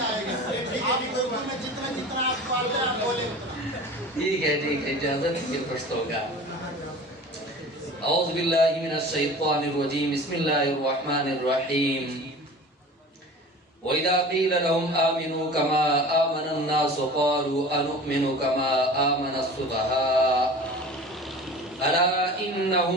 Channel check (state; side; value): normal; both; correlation 0.39